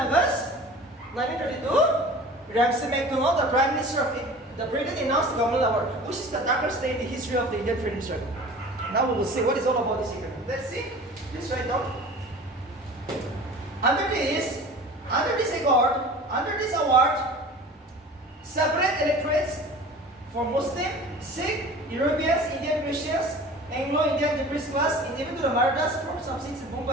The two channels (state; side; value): normal; both; correlation 0.41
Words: 1932, Ramsay MacDonald, the Prime Minister of the Britain, announced the Commonwealth Award, which is the darkest day in the history of the Indian freedom struggle. Now we will see what is all about this agreement. Let's see. Let's write down. Under this award, separate electorates for Muslim, Sikh, Europeans, Indian Christians, Anglo-Indian depressed class, and even to the Marathas for some seats in